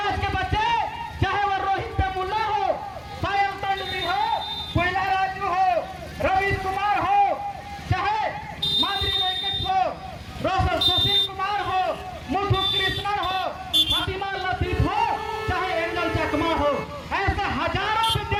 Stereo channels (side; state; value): both; identical; correlation 1.00